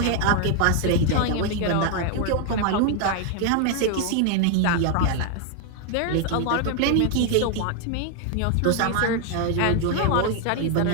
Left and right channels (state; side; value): different; both; correlation 0.00